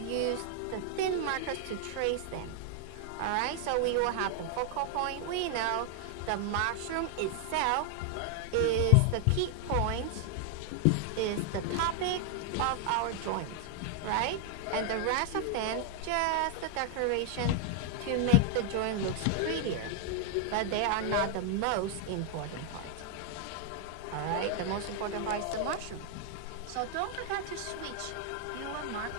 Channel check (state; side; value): different; both; correlation 0.00